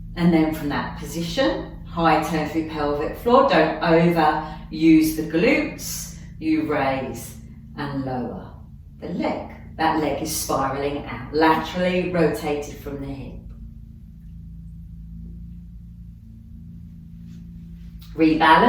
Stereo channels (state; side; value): identical; both; correlation 1.00